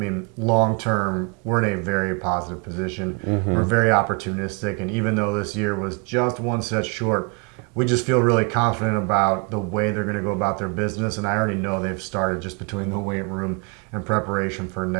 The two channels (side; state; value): left; quieter; 33.9 dB